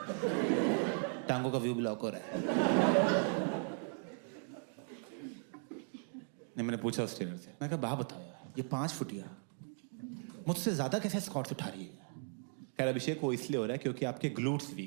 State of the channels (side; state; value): left; silent; 53 dB below the other